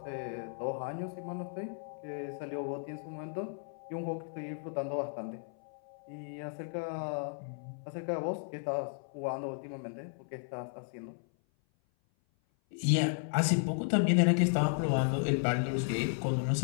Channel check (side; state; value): right; silent; 55 dB below the other